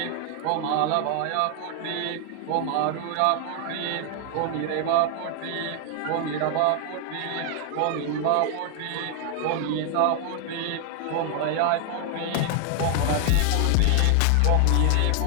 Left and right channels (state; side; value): different; both; correlation 0.00